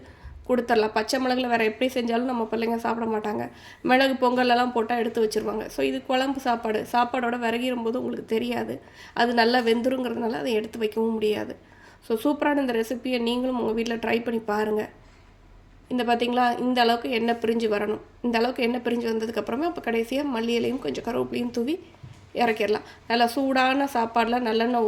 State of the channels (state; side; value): identical; both; correlation 1.00